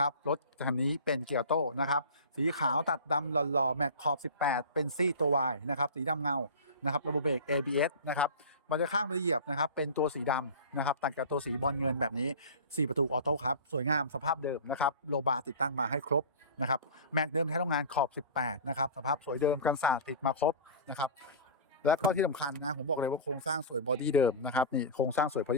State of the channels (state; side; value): inverted; both; correlation -0.33